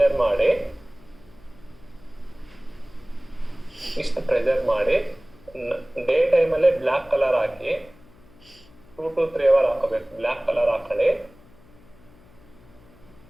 ಮಾಡಿ, ಇಷ್ಟು ಪ್ರೆಷರ್ ಮಾಡಿ ಡೇ ಟೈಮಲ್ಲೇ black colour hockey 2 to 3 hours ಹಾಕಬೇಕು. ಬ್ಲ್ಯಾಕ್ ಕಲರ್ ಹಾಕೊಳ್ಳಿ.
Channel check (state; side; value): noise; left; hum, 26 dB below the sound